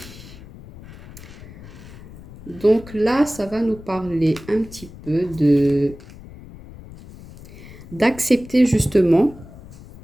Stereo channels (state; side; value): noise; left; rumble, 17 dB below the sound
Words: Donc là, ça va nous parler un petit peu d'accepter justement